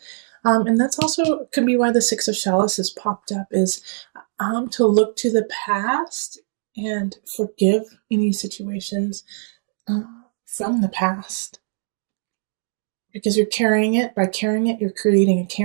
And that's also could be why the Six of Chalices popped up, is to look to the past and forgive any situations from the past. Because you're carrying it. By carrying it, you're creating a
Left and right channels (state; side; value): silent; left; digital silence